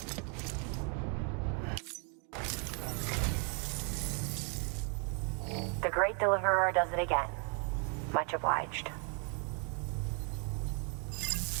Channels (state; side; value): quieter; left; 38.1 dB